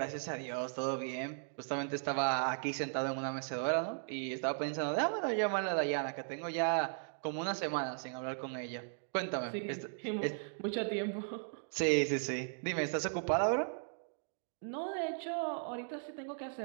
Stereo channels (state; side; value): silent; left; digital silence